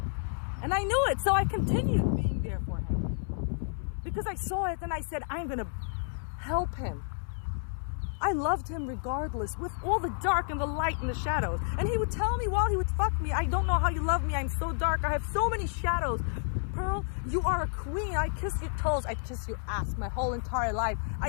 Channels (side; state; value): right; silent; 57 dB below the other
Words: And I knew it, so I continued being there for him. Because I saw it and I said, I'm going to help him. I loved him regardless, with all the dark and the light and the shadows. And he would tell me while he would fuck me, I don't know how you love me. I'm so dark. I have so many shadows. Pearl, you are a queen. I kiss your toes. I'd kiss your ass my whole entire life.